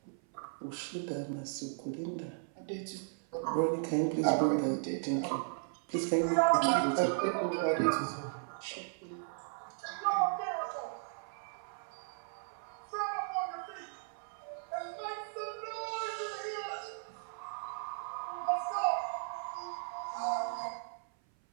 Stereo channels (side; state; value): left; silent; 54 dB below the other